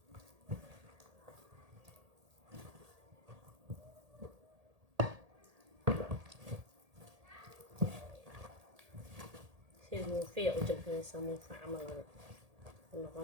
الموفية وجبنا موفى عمل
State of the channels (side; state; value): left; late; 1.8 ms